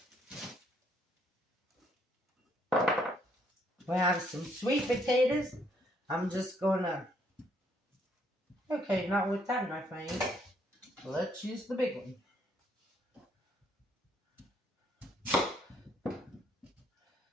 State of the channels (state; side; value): normal; both; correlation 0.69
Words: We have some sweet potatoes. I'm just gonna, okay, not with that in my face. Let's use the big one.